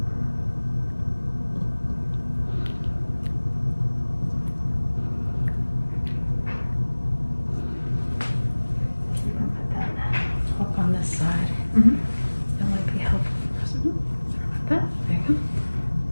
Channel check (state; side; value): inverted; both; correlation -1.00